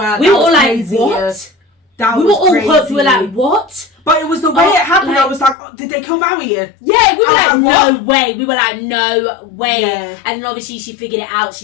We were all like, what? We were all hooked. We were like, what? But it was the way it happened. I was like, oh, did they kill Maui? Yeah, we were like, no way. We were like, no way. Yeah. And then obviously she figured it out.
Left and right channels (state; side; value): drops out; right; at 5.6 s